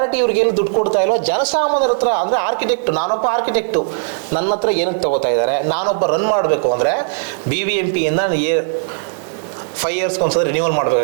ಇವ್ರಿಗೆ ಏನು ದುಡ್ಡು ಕೊಡ್ತಾ ಇಲ್ವೋ, ಜನಸಾಮಾನ್ಯರ ಹತ್ರ, ಅಂದ್ರೆ ಆರ್ಕಿಟೆಕ್ಟ್, ನಾನೊಬ್ಬ ಆರ್ಕಿಟೆಕ್ಟು, ನನ್ನ ಹತ್ರ ಏನಕ್ಕೆ ತಗೋತಾ ಇದ್ದಾರೆ? ನಾನೊಬ್ಬ ರನ್ ಮಾಡಬೇಕು ಅಂದರೆ BBMP ಇಂದ 5 ಇಯರ್ಸ್ಗೆ ಒಂದ್ಸಲ ರಿನ್ಯೂವಲ್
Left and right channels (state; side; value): silent; left; digital silence